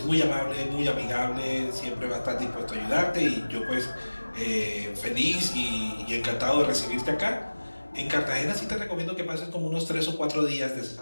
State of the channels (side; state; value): both; inverted; correlation -1.00